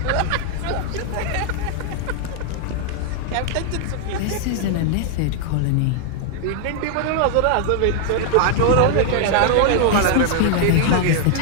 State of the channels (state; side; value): different; both; correlation 0.00